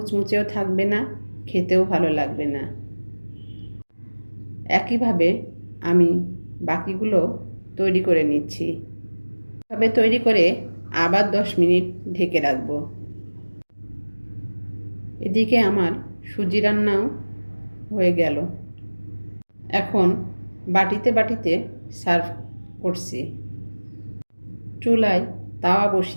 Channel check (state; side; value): inverted; both; correlation -1.00